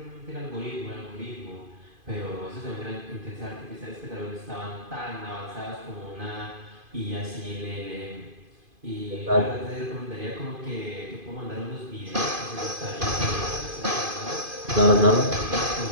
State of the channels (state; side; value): late; left; 2.5 ms